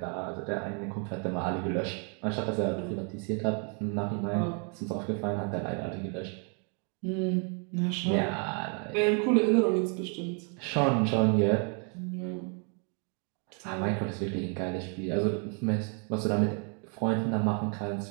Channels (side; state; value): left; quieter; 39.3 dB